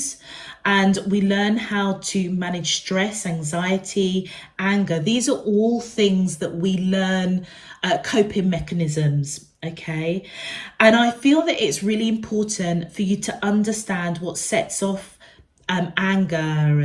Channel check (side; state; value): both; identical; correlation 1.00